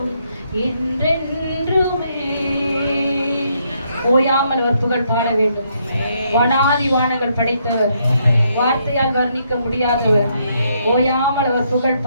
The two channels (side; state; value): both; inverted; correlation -0.74